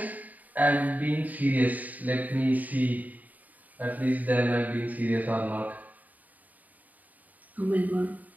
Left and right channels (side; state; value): left; late; 0.078 ms